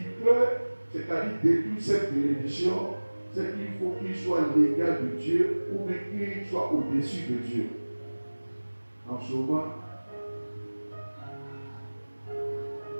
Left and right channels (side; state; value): both; inverted; correlation -1.00